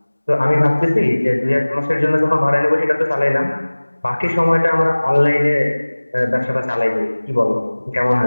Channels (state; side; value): inverted; both; correlation -1.00